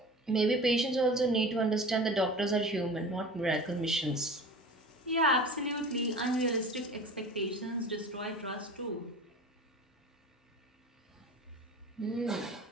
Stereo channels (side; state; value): both; normal; correlation 0.37